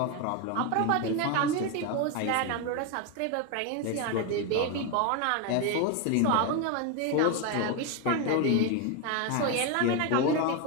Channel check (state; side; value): different; both; correlation 0.02